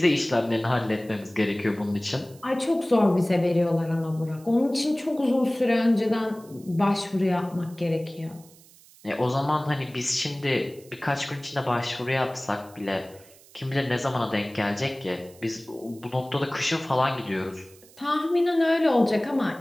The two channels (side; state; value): right; noise; hiss, 25 dB below the sound